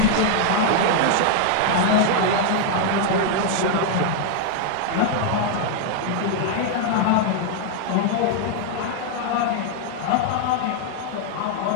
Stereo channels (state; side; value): different; both; correlation 0.00